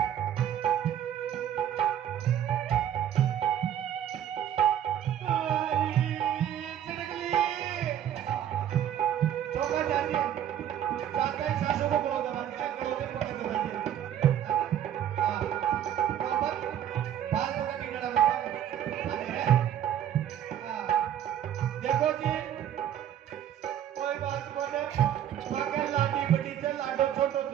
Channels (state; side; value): quieter; left; 10.4 dB